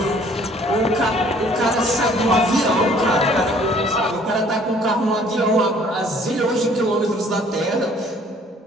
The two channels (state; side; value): normal; both; correlation 0.57